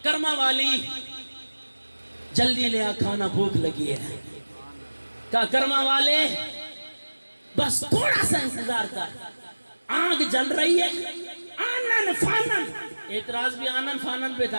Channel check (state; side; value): inverted; both; correlation -1.00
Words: کرما والی جلدی لے آ کھانا بھوک لگی ہے. کہا کرما والے بس تھوڑا سا انتظار کر, آگ جل رہی ہے آنن فانن. اعتراض بھی آنن فانن پہ